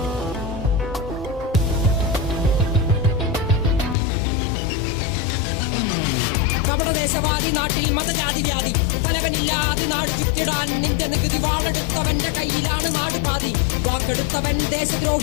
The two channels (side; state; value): right; drops out; at 4.0 s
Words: കപടദേശവാദി നാട്ടിൽ മതജാതി വ്യാധി, തലവനില്ലാതെ നാട് ചുറ്റിടാൻ നിന്റെ നികുതി. വാളെടുത്തവന്റെ കയ്യിലാണ് നാട് പാതി, വാക്കെടുത്തവൻ